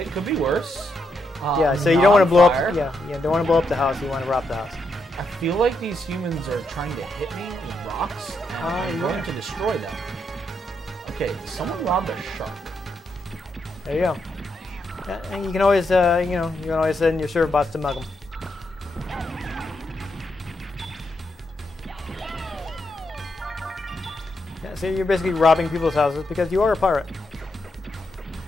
could be worse. Yeah, so you don't want to blow up. Yeah, don't want to blow up the house. You want to rob the house. I feel like these humans are trying to hit me with rocks. I'm going to destroy them. Okay, someone robbed a shark. There you go. Yeah, and you can always, you can always send your server bots to mug them. Yeah, so you're basically robbing people's houses because you are a pirate.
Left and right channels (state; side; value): normal; both; correlation 0.81